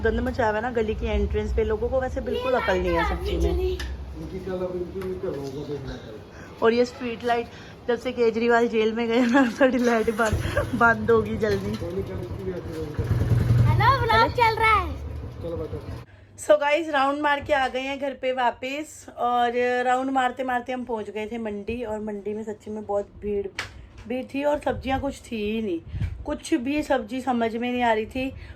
मचा हुआ है ना गली की एंट्रेंस पे, लोगों को वैसे बिल्कुल अकल नहीं है सब चीज में। इनकी कल अब इनकी करोगे देखना कल। और ये स्ट्रीट लाइट जब से केजरीवाल जेल में गए ना, थोड़ी लाइट बंद होगी जल्दी। हेलो, व्लॉग चल रहा है। चलो बेटा। सो गाइस राउंड मार के आ गए हैं घर पे वापस। और राउंड मारते मारते हम पहुंच गए थे मंडी। और मंडी में सच्ची में बहुत भीड़ थी और सब्जियां कुछ थी ही नहीं, कुछ भी सब्जी समझ में नहीं आ रही थी।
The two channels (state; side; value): identical; both; correlation 1.00